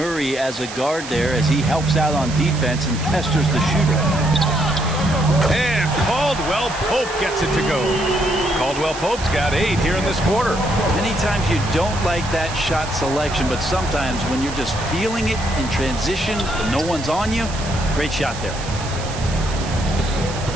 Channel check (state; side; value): noise; right; hiss, 12 dB below the sound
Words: as a guard there as he helps out on defense and pesters the shooter. And Caldwell Pope gets it to go. Caldwell Pope's got 8 here in this quarter. Many times you don't like that shot selection, but sometimes when you're just feeling it in transition and no one's on you, great shot there.